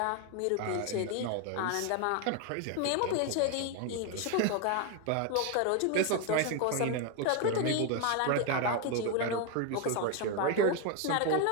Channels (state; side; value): different; both; correlation 0.01